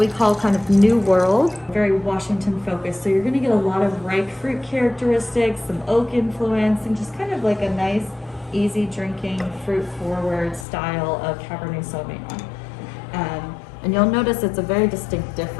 call kind of New World, very Washington focused. So you're going to get a lot of ripe fruit characteristics, some oak influence, and just kind of like a nice, easy drinking, fruit forward style of Cabernet Sauvignon. And you'll notice it's a very distinct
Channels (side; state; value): right; drops out; at 10.7 s